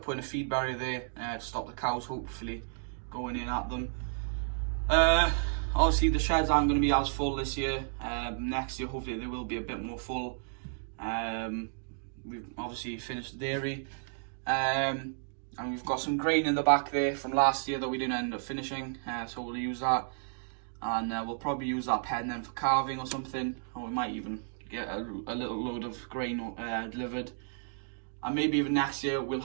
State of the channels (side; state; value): left; silent; digital silence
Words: putting a feed barrier there to stop the cows hopefully going in at them. Obviously the sheds aren't going to be as full this year. Next year hopefully they will be a bit more full. We've obviously finished the dairy, and we've got some grain in the back there from last year that we didn't end up finishing, so we'll use that, and we'll probably use that pen then for carving or something, or we might even get a little load of grain delivered. And maybe even next year we'll